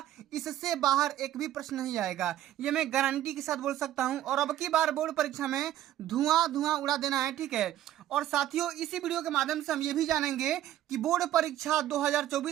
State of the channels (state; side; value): quieter; left; 12.9 dB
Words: इससे बाहर एक भी प्रश्न नहीं आएगा, ये मैं गारंटी के साथ बोल सकता हूं। और अब की बार बोर्ड परीक्षा में धुआं धुआं उड़ा देना है, ठीक है। और साथियों, इसी वीडियो के माध्यम से हम ये भी जानेंगे कि बोर्ड परीक्षा